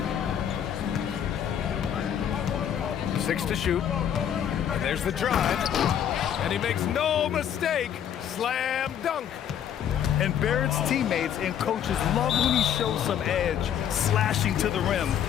6 to shoot. And there's the drive. And he makes no mistake. Slam dunk. And Barrett's teammates and coaches love when he shows some edge, slashing to the rim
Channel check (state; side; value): quieter; right; 9.4 dB